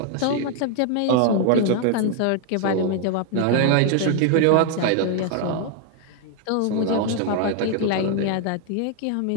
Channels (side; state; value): both; different; correlation 0.00